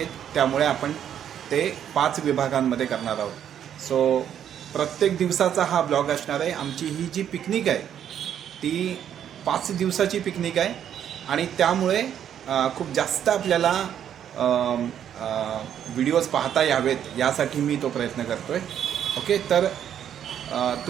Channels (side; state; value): left; quieter; 9.6 dB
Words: त्यामुळे आपण ते 5 विभागांमध्ये करणार आहोत. सो प्रत्येक दिवसाचा हा ब्लॉग असणार आहे. आमची ही जी पिकनिक आहे ती 5 दिवसाची पिकनिक आहे आणि त्यामुळे खूप जास्त आपल्याला व्हिडिओज पाहता यावेत यासाठी मी तो प्रयत्न करतो आहे. ओके, तर